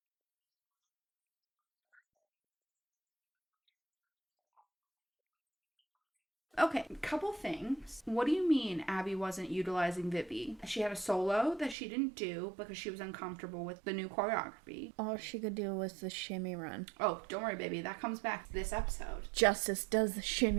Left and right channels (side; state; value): left; drops out; at 11.8 s